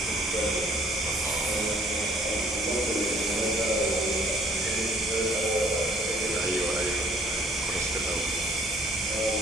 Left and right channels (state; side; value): normal; both; correlation 0.58